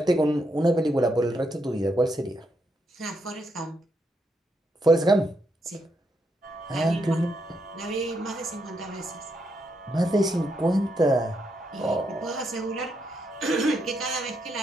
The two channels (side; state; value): both; normal; correlation 0.79